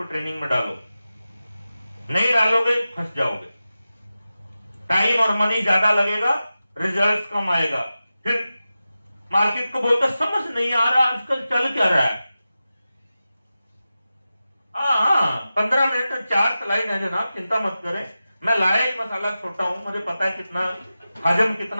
ट्रेनिंग में डालो। नहीं डालोगे फंस जाओगे, टाइम और मनी ज्यादा लगेगा, रिजल्ट कम आएगा। फिर मार्केट को बोलता समझ नहीं आ रहा आजकल चल क्या रहा है, हाँ 15 मिनट 4 स्लाइड है जनाब, चिंता मत करें। मैं लाया ही मसाला छोटा हूं, मुझे पता है कितना हजम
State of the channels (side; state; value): both; inverted; correlation -0.94